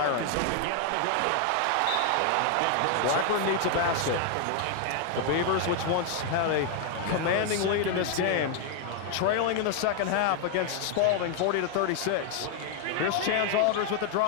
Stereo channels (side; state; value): both; different; correlation 0.00